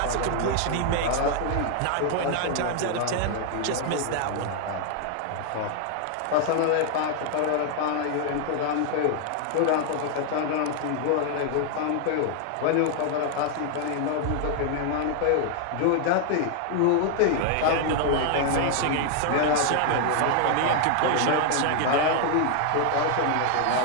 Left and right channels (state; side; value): different; both; correlation 0.00